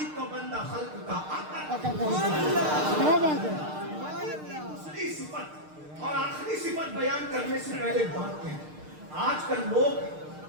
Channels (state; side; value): late; left; 6.6 ms